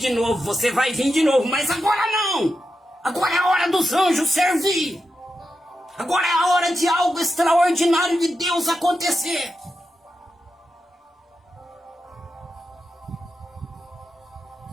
novo, você vai vir de novo, mas agora não. Agora é a hora dos anjos servir. Agora é a hora de algo extraordinário de Deus acontecer.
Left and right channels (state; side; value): normal; both; correlation 0.88